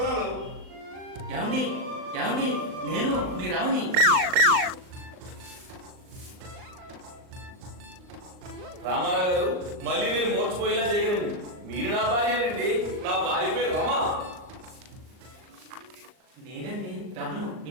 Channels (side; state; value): left; late; 39 ms